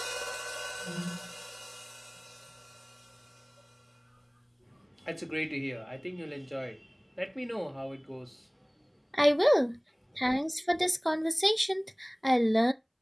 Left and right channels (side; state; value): both; identical; correlation 1.00